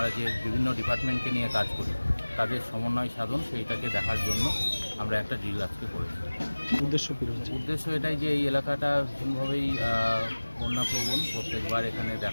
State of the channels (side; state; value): both; inverted; correlation -1.00